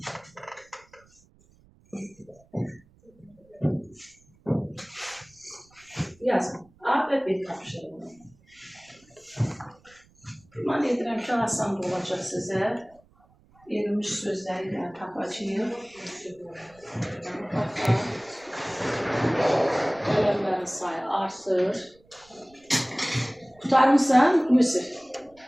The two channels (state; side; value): noise; right; rumble, 30 dB below the sound